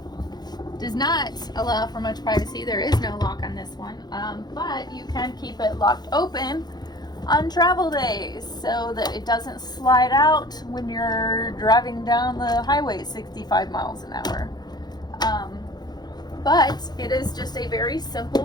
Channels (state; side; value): late; right; 0.20 ms